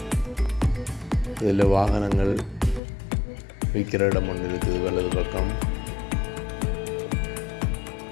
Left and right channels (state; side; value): drops out; right; at 2.8 s